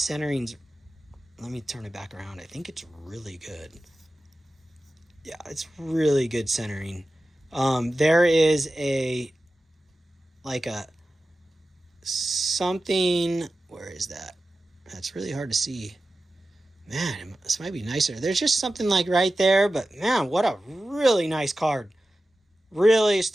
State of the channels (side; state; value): both; normal; correlation 0.94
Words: Let me turn it back around. I think it's really good. Yeah, it's really good centering. There is something... Where is that? That's really hard to see. Man, this might be nicer. There's just something right there. But man, what a really nice card. Really